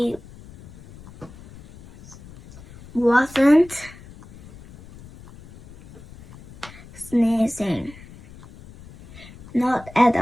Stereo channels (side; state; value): left; noise; rumble, 20 dB below the sound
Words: wasn't sneezing. Not at